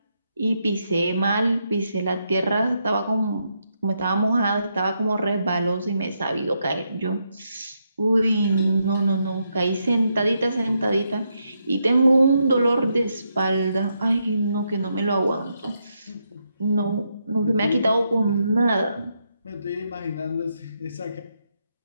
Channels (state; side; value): inverted; both; correlation -0.81